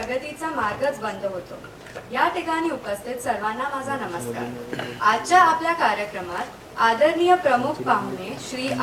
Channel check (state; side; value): identical; both; correlation 1.00